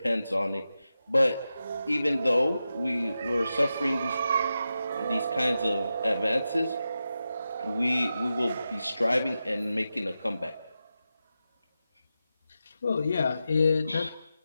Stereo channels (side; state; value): both; inverted; correlation -0.90